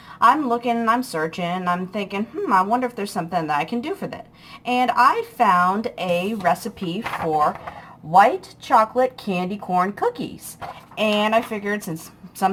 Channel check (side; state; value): both; identical; correlation 1.00